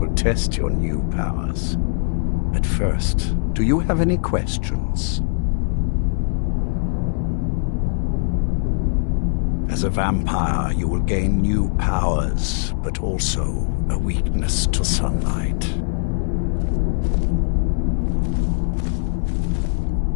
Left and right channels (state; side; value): silent; right; 60 dB below the other